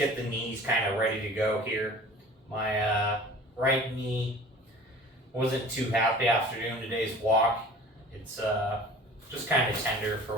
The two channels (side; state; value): both; normal; correlation 0.44